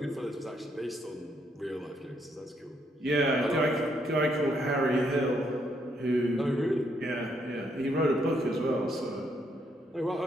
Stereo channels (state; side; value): normal; both; correlation 0.74